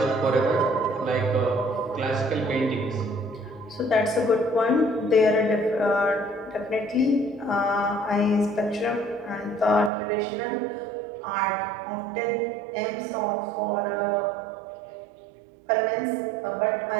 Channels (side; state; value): left; drops out; at 9.9 s